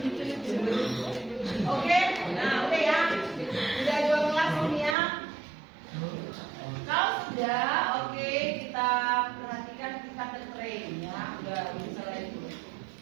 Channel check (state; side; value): drops out; left; at 5.0 s